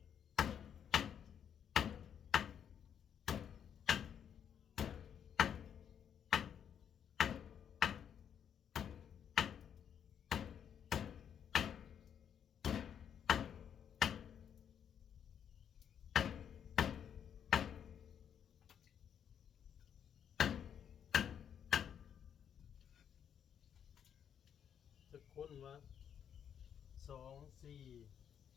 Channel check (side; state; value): right; quieter; 8.5 dB